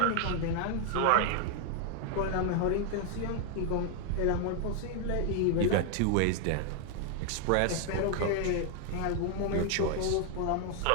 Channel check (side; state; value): both; different; correlation 0.00